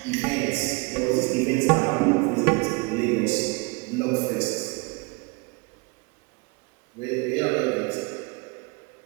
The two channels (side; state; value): left; quieter; 28.8 dB